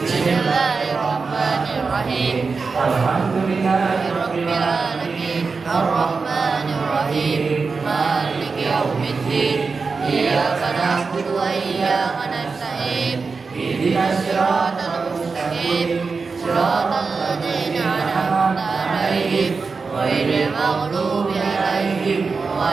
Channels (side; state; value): left; quieter; 4.6 dB